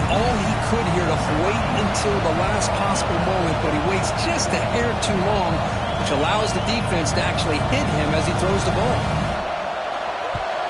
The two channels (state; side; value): identical; both; correlation 1.00